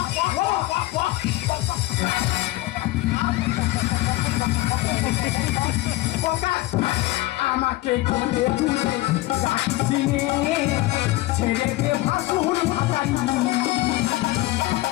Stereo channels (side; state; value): right; quieter; 18.5 dB